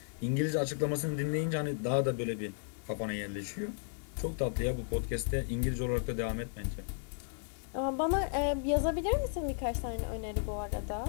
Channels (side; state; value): right; silent; digital silence